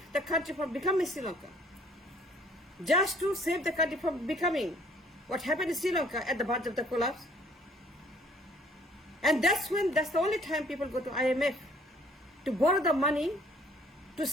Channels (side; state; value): both; normal; correlation 0.59